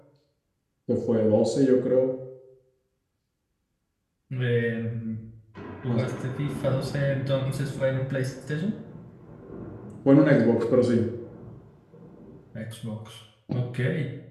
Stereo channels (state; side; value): identical; both; correlation 1.00